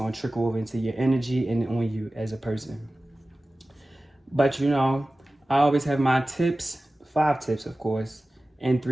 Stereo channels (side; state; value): both; normal; correlation 0.96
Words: to trickle over into your energy and on you as a person. But I always have my tips, 5 tips, of course, and